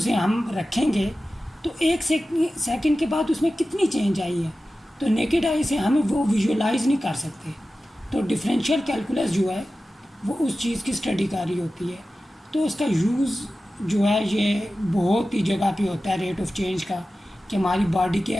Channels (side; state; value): both; normal; correlation 0.94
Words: हम रखेंगे तो एक सेकंड के बाद उसमें कितनी चेंज आई है, तो नेकेड आई से हम वो विजुअलाइज़ नहीं कर सकते। तो डिफरेंशियल कैलकुलस जो है वो उस चीज़ की स्टडी कर रही होती है। तो उसका यूज़ जो है ये बहुत ही जगह पे होता है रेट ऑफ चेंज का, कि हमारी बॉडी के